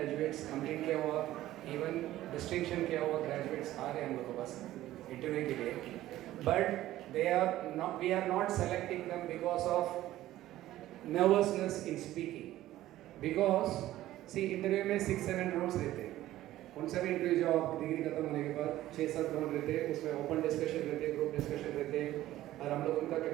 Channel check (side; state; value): left; quieter; 14.7 dB